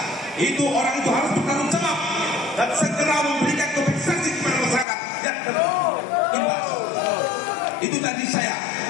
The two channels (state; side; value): drops out; right; at 4.9 s